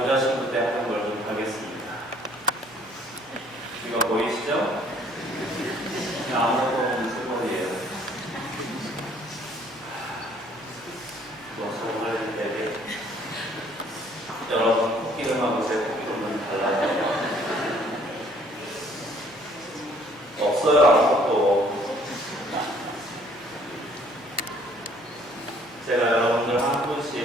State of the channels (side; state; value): both; normal; correlation 0.60